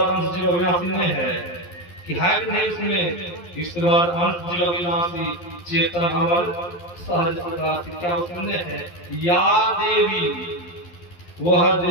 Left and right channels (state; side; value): late; right; 11 ms